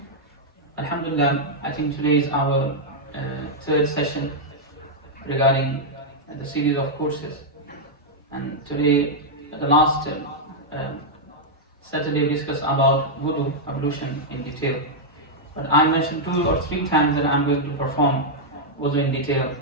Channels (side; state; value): both; normal; correlation -0.04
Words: Alhamdulillah, I think today is our third session regarding the series of courses. And today, the last Saturday, we discussed about wudu, ablution in detail. But I mentioned 2 or 3 times that I'm going to perform wudu in detail.